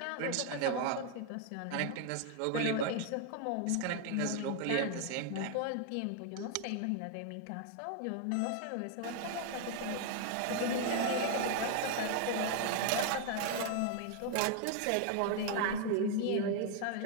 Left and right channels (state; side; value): different; both; correlation 0.00